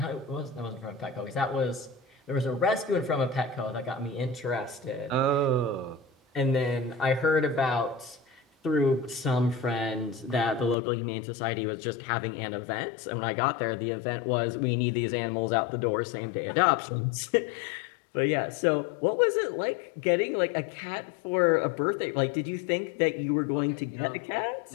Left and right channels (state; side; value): drops out; right; at 10.8 s